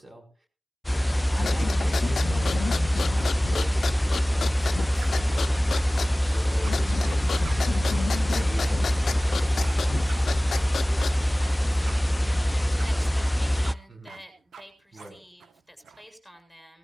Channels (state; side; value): normal; both; correlation 0.98